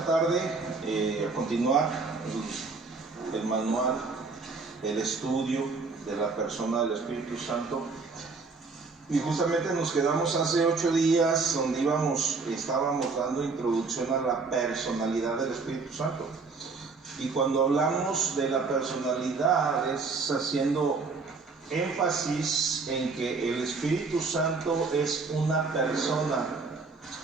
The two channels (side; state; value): left; quieter; 4.3 dB